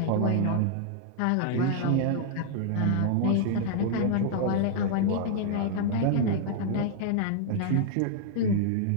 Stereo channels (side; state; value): both; different; correlation -0.01